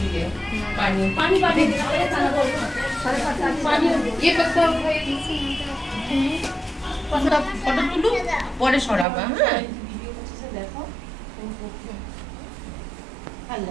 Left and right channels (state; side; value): drops out; left; at 9.1 s